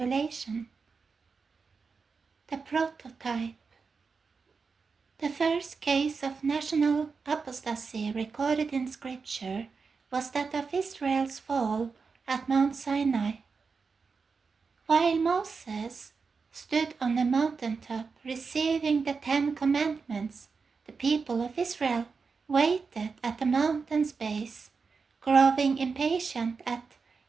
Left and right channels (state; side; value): quieter; left; 5.0 dB